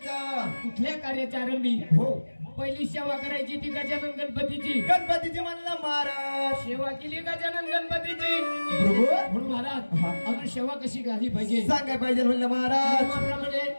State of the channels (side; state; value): both; inverted; correlation -1.00